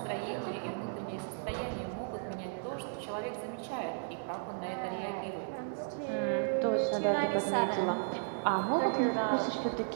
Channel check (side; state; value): left; silent; 55 dB below the other